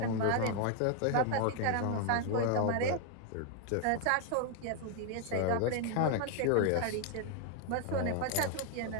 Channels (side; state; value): both; different; correlation 0.00